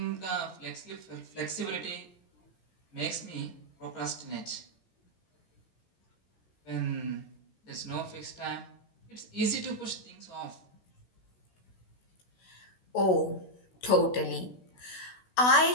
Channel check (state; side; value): late; right; 16 ms